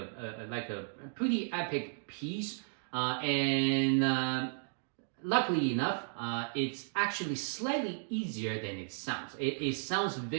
pretty epic piece, and luckily enough, it's actually slightly easier than it sounds. It sounds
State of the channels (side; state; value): left; silent; digital silence